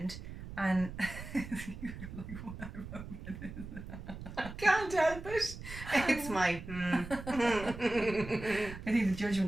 And I can't help it. It's my I think the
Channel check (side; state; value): right; noise; rumble, 11 dB below the sound